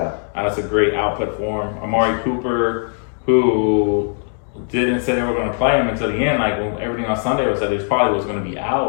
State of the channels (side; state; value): right; silent; 59 dB below the other